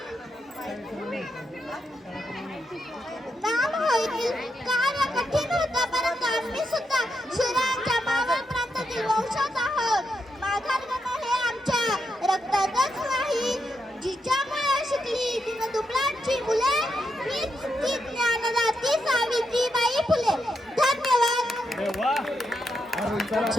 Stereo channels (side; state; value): both; normal; correlation 0.83